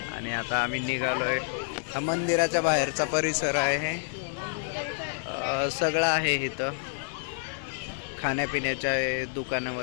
आणि आता आम्ही निघालोय. हा मंदिराच्या बाहेरचा परिसर आहे. सगळं आहे इथं. खाण्यापिण्याच्या दुकानं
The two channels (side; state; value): right; silent; digital silence